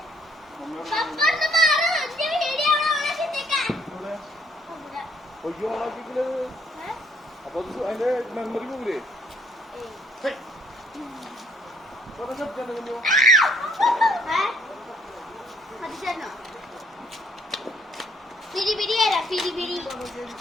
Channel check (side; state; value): both; normal; correlation 0.64